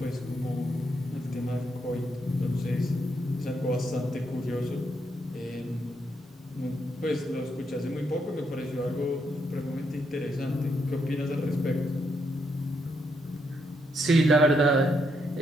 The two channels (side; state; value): both; normal; correlation 0.77